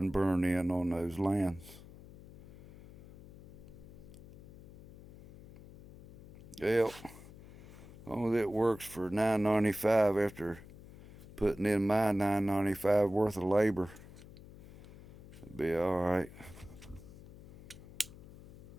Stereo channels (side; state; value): left; noise; hum, 18 dB below the sound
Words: burn in on those lands. Well, as long as it works for $9.95 after putting in my $9.95 worth of labor, it'll be all right.